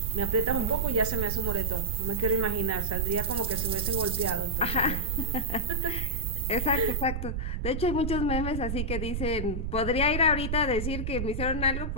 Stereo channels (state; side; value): noise; right; rumble, 2 dB below the sound